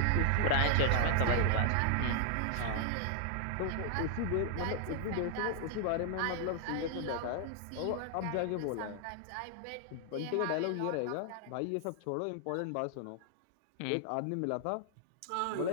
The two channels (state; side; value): different; both; correlation 0.00